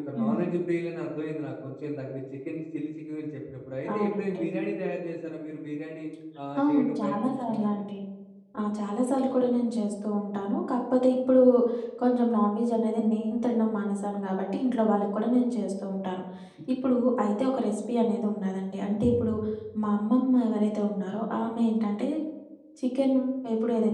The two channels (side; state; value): both; identical; correlation 1.00